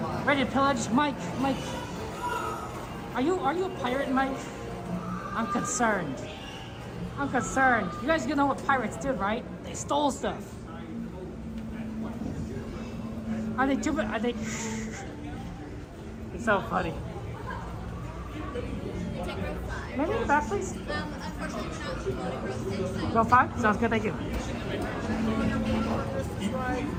Ready to pillage, Mike. Are you a pirate, Mike? I'm concerned. I'm concerned. You guys know what pirates did, right? They stole stuff. Are they too? Are they? It's so funny. Maybe in the back, please. Unfortunately, we're not promoting row 6. Row 5? Sounds good, thank you.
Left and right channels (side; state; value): both; identical; correlation 1.00